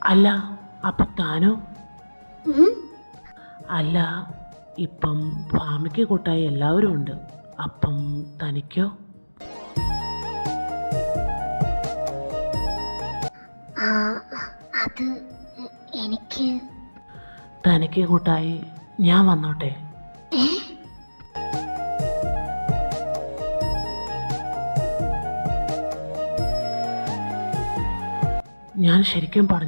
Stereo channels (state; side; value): inverted; both; correlation -1.00